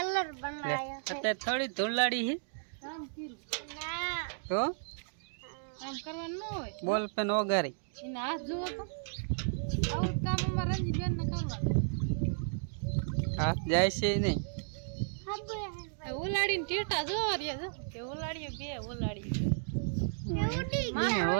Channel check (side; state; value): left; silent; digital silence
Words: બનાવ્યો અત્યારે થોડી ધૂળાડી છે કામ કર્યું ના તો કામ કરવાનું ન હોય બોલ પેન ઓગારી એને હાથ જુઓ તો આવું કામ અમારા રંજી બેન ને કરવાનું હાથ જાય છે નહીં ઉલાડીને ટેટા જોવા રહ્યા જો કે ઉલાડીએ બે ઉલાડી